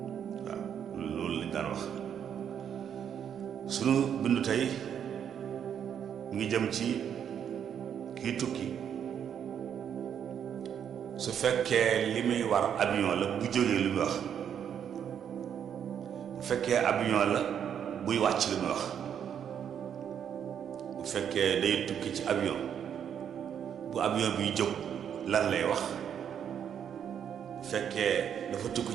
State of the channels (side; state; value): left; quieter; 8.6 dB